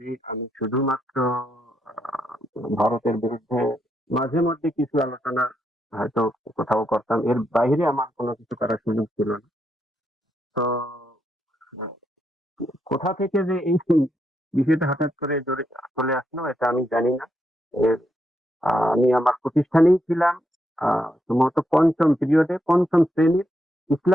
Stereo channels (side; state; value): both; normal; correlation 0.80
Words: আমি শুধুমাত্র আহ, ভারতের বিরুদ্ধে মাঝে মধ্যে কিছু আলোচনা হয়তো কোথাও করতাম, এর বাইরে আমার কোনো কিছু করার সুযোগ ছিল না। তো কোথা থেকে যে এই বিষয়টা হঠাৎ করে চলে আসলো এটা আমি জানি না। এর আমি আমার প্রতিষ্ঠানেই ছিলাম, সম্ভবত পঞ্চম পিরিয়ডে, পঞ্চম শ্রেণীর